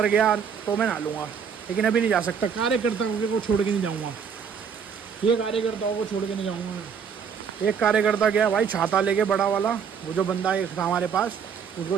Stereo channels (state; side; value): quieter; left; 6.8 dB